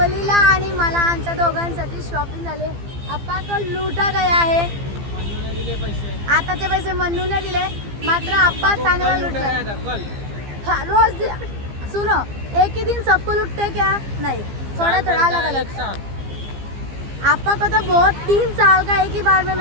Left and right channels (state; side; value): late; left; 15 ms